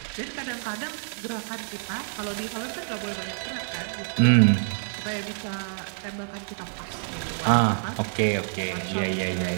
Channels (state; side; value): silent; left; 60 dB below the other